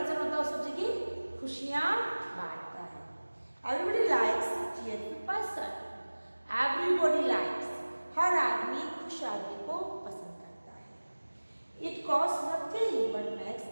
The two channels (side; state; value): both; inverted; correlation -1.00